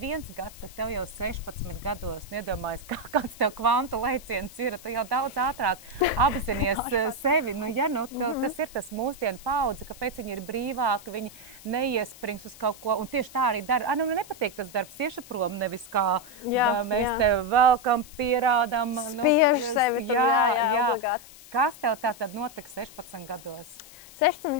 gads, tad tev jau 16 gados, iedomājies, kāds tev kvantu lēciens ir, tu jau daudz ātrāk apzinies sevi, tas ir tas mūsdienu paudze, kāpēc viņi ir brīvāki, viņi neiesprings uz kaut ko, un tieši tā arī dara, nepatīk tas darbs, tieši prom, nevis kā mēs tev velkam, pierādām. Spiež sevi. Obligāti. Kas tev tātad notika 16 gados? 16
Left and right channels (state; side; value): noise; left; hiss, 19 dB below the sound